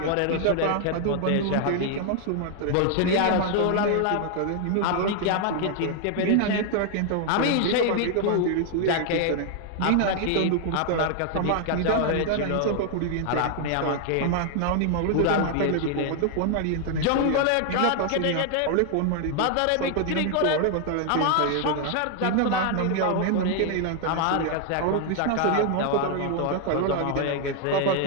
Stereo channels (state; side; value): different; both; correlation 0.00